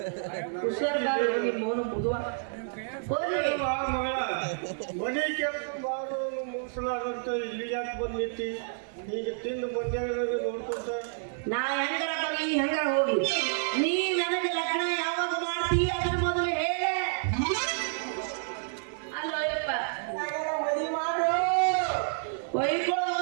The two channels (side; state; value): left; silent; 58 dB below the other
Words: ಹುಷಾರ್ಗಾರ ನಿಮ್ಮ ಮೌನ ಬುಧವಾರ ಮನೆ ಕೆಲಸ ಮಾಡೋನು ಮುಗಿಸಲಾರಂತ ಇಲ್ಲಿ ಯಾಕೆ ಬಂದಿತ್ತಿ ಈಗ ತಿಂದು ಬಂದಾಗ ನೋಡ್ಕೊಂತ ನಾ ಹೆಂಗಾರ ಬರ್ಲಿ ಹೆಂಗಾರ ಹೋಗಿ ನೀ ನನಗೆ ಲಗ್ನ ಯಾವಾಗ ಮಾಡ್ತೀ ಅದನ್ನ ಮೊದಲು ಹೇಳ ಅಲ್ಲೋ ಯಪ್ಪ ಮದುವೆ ಮಾಡು ಒಯ್ಕೊಳ್ಳೋ